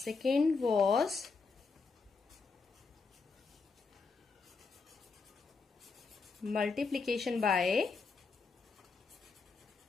was multiplication by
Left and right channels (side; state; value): right; quieter; 4.6 dB